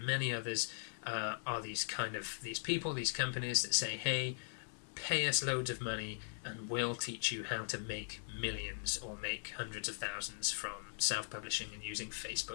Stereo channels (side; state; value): right; silent; digital silence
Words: many others. Are these people, these companies that say, hey, pay us loads of money and we'll teach you how to make millions or make hundreds of thousands from self-publishing and using